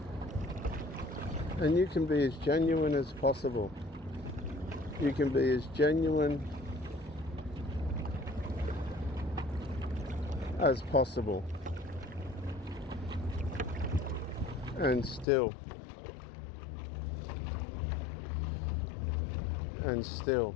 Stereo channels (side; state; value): right; drops out; at 15.2 s